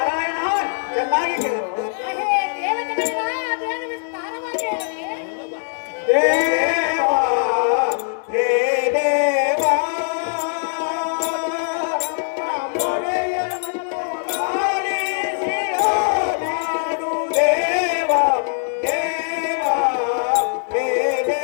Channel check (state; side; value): silent; right; 65 dB below the other